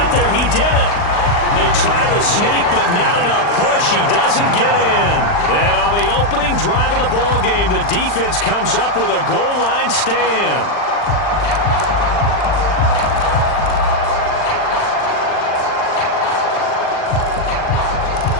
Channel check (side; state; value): right; late; 40 ms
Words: there, he didn't. They try the sneak, but not enough push. He doesn't get in. And on the opening drive of the ball game, the defense comes up with a goal line stand.